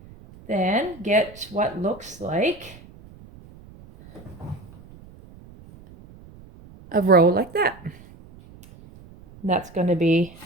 then get what looks like a row like that. And that's going to be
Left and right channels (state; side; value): noise; right; rumble, 21 dB below the sound